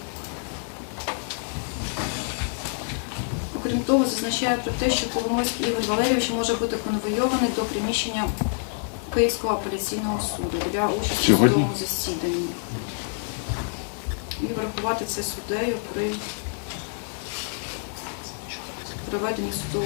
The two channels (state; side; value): silent; right; 57 dB below the other